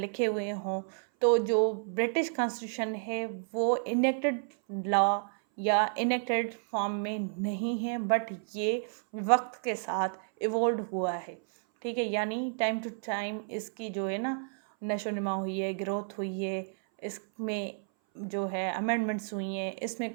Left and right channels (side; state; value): left; silent; 57 dB below the other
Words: हुए हों, तो जो ब्रिटिश कॉन्स्टिट्यूशन है वो इनेक्टेड लॉ या इनेक्टेड फॉर्म में नहीं है, बट ये वक्त के साथ इवॉल्व हुआ है, ठीक है। यानी टाइम टू टाइम इसकी जो है ना नशो नुमा हुई है, ग्रोथ हुई है, इसमें जो है अमेंडमेंट्स हुई हैं, इसमें